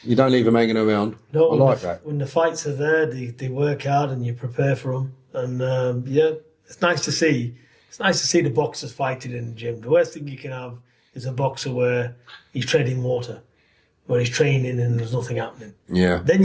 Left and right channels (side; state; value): both; identical; correlation 1.00